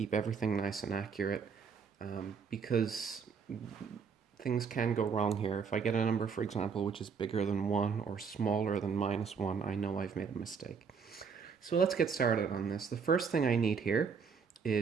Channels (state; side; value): quieter; left; 5.9 dB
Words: everything nice and accurate, because things can go wrong here. If I get a number, for example, which is bigger than 1 or smaller than -1, I know I've made a mistake. So let's get started on this. The first thing I need here